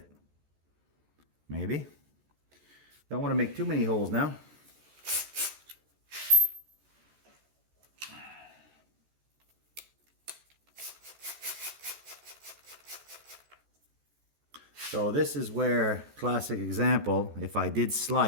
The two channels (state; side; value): late; left; 14 ms